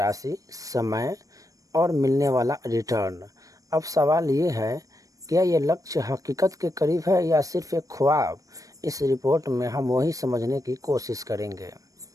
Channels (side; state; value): left; late; 0.16 ms